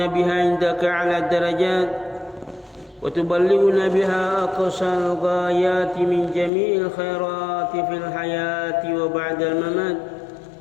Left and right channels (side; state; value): right; drops out; at 6.5 s